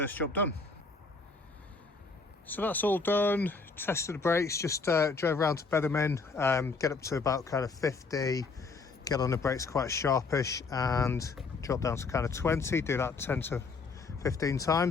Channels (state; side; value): quieter; right; 4.2 dB